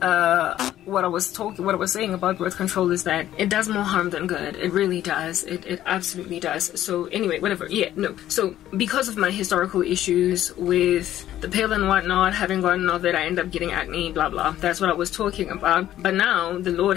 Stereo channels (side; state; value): right; quieter; 12.6 dB